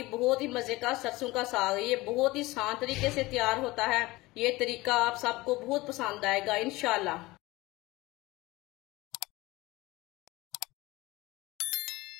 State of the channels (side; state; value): right; quieter; 20.5 dB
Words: बहुत ही मजे का सरसों का साग। ये बहुत ही आसान तरीके से तैयार होता है। ये तरीका आप सबको बहुत पसंद आएगा इंशाल्लाह।